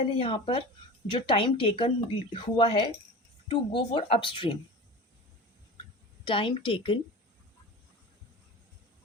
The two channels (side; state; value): both; normal; correlation 0.33